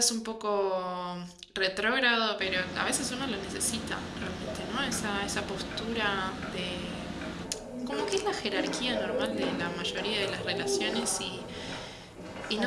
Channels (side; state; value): both; identical; correlation 1.00